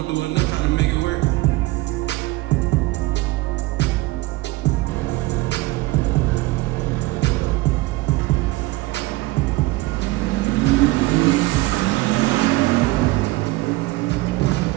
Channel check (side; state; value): left; quieter; 20.1 dB